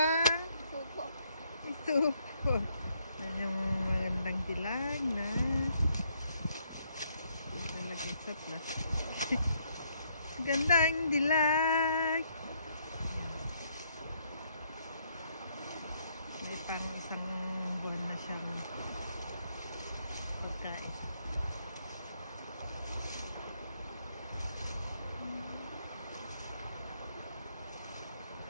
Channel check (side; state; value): both; inverted; correlation -0.72